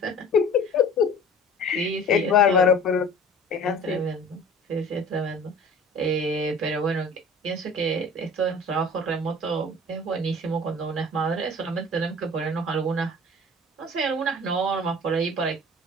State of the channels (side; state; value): both; normal; correlation 0.44